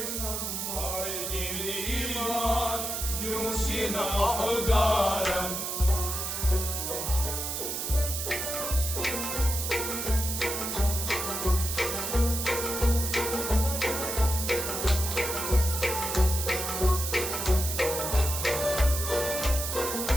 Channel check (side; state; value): right; noise; hiss, 3 dB below the sound